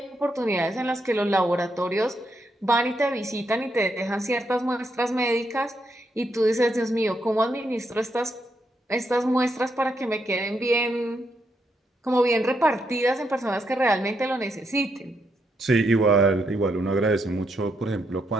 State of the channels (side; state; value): both; normal; correlation 0.80